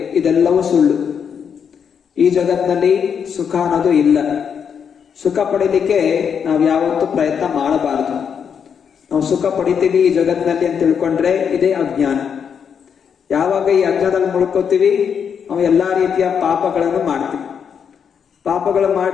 ಇದೆಲ್ಲವೂ ಸುಳ್ಳು. ಈ ಜಗತ್ತಿನಲ್ಲಿ ಸುಖ ಅನ್ನೋದು ಇಲ್ಲ. ಸುಖ ಪಡೀಲಿಕ್ಕೆ ನಾವು ಯಾವತ್ತೂ ಪ್ರಯತ್ನ ಮಾಡಬಾರದು. ನಾವು ಸುಖ ಪಡಿತೀವಿ ಈ ಜಗತ್ತಿನಲ್ಲಿ ಅಂತ ತಿಳ್ಕೊಂಡ್ರೆ ಇದೇ ಅಜ್ಞಾನ. ಯಾವಾಗ ಈ ಅಜ್ಞಾನದಲ್ಲಿ ಮುಳ್ಕೋತೀವಿ ನಾವು ಎಲ್ಲಾ ರೀತಿಯ ಪಾಪಗಳನ್ನು ಮಾಡ್ತೀವಿ. ಪಾಪಗಳು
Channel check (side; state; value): right; quieter; 7.2 dB